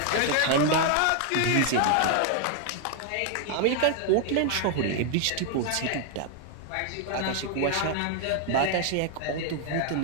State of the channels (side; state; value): both; different; correlation 0.00